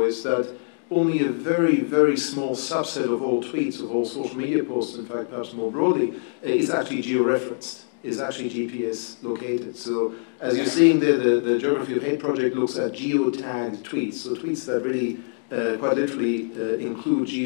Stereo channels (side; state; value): right; silent; digital silence